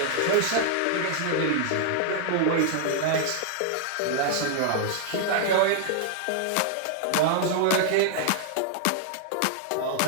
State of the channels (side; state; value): both; different; correlation -0.01